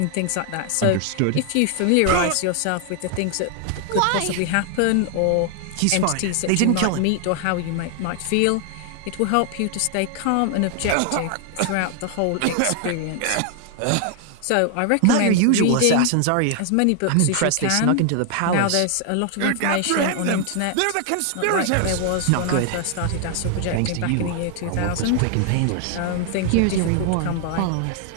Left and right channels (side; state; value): both; different; correlation 0.00